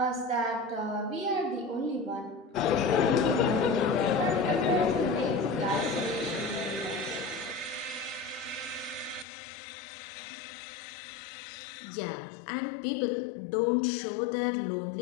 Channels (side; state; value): right; drops out; at 9.2 s